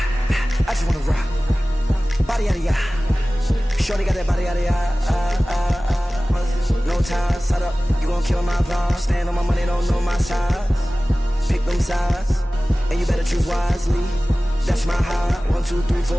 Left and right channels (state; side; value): normal; both; correlation 0.97